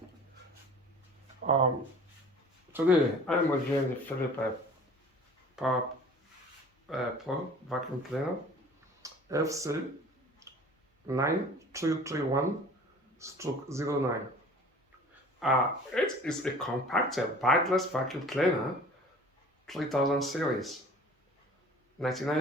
Today I am reviewing the Philips PowerPro vacuum cleaner FC9331/09. It is a compact bagless vacuum cleaner, 3000 series,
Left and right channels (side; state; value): both; normal; correlation 0.46